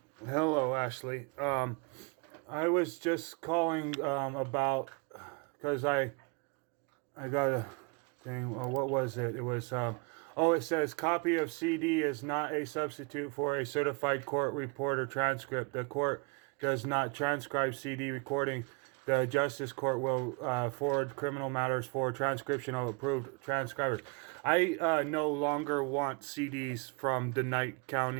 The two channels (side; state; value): left; quieter; 32.6 dB